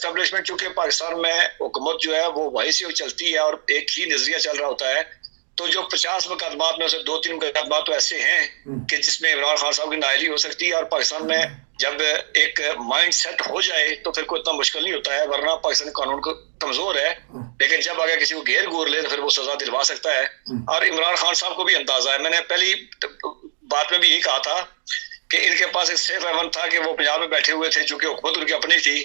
चूंकि पाकिस्तान में हुकूमत जो है वो वहीं से चलती है और एक ही नजरिया चल रहा होता है। तो जो 50 मुकदमात में से 2-3 मुकदमात तो ऐसे हैं कि जिसमें इमरान खान साहब की नाअहली हो सकती है, और पाकिस्तान में जब एक माइंड सेट हो जाए तो फिर कोई इतना मुश्किल नहीं होता है, वरना पाकिस्तानी कानून को कमजोर है, लेकिन जब अगर किसी को घेर घूर ले तो फिर वो सजा दिलवा सकता है। और इमरान खान साहब को भी अंदाजा है, मैंने पहली बात में भी यही कहा था कि इनके पास एक सेफ हेवन था कि वो पंजाब में बैठे हुए थे, चूंकि हुकूमत उनकी अपनी थी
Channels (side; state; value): left; silent; digital silence